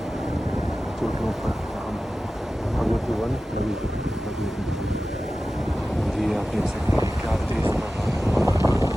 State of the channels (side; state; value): both; normal; correlation 0.95